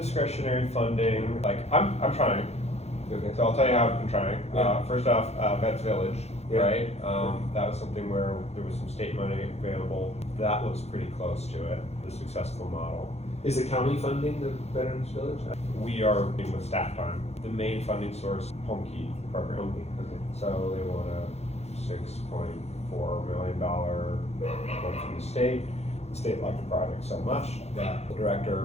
funding. Like, I'm trying. Okay. So I'll tell you how I'm trying. Yeah. First off, Vets Village, Yeah. right? That was something where there was some state money available. That looks pretty close to it, the successful model. Is the county funding the Veterans Village? We are working with staff time. The main funding source, Home Key program. Okay. So they want a $6.4 million one from the state. The state liked the project so much that the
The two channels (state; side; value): late; right; 0.31 ms